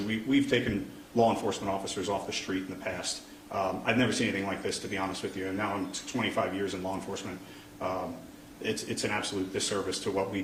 we've taken law enforcement officers off the street in the past. I've never seen anything like this, to be honest with you. And now I'm 25 years in law enforcement. It's an absolute disservice to what we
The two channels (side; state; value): both; identical; correlation 1.00